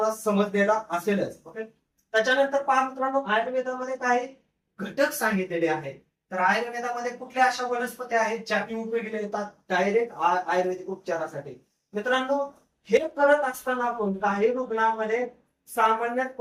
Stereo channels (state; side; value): identical; both; correlation 1.00